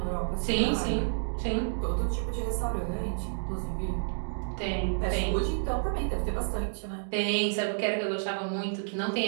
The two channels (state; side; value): silent; left; digital silence